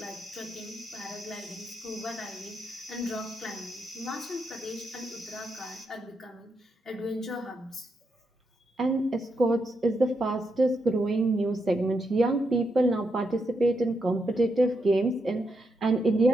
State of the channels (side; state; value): both; normal; correlation 0.82